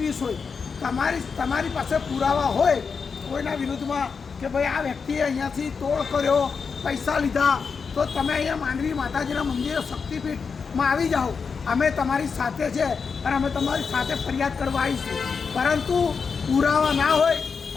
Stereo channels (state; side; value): quieter; right; 5.5 dB